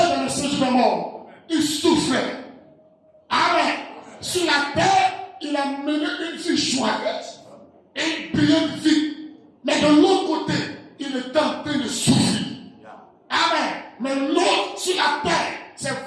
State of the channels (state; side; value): identical; both; correlation 1.00